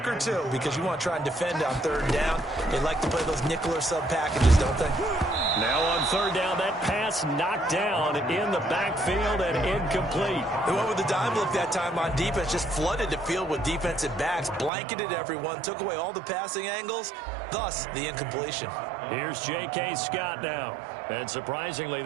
or two because you want to try and defend on 3rd down. They like to play those nickel or sub packages, don't they? Now on 3rd down, that pass knocked down in the backfield and incomplete. They went with the dime look that time on defense, just flooded the field with defensive backs, blanketed everyone, took away all the passing angles, thus the incompletion. Here's J.K. Scott now. And surprisingly,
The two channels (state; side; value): drops out; left; at 14.7 s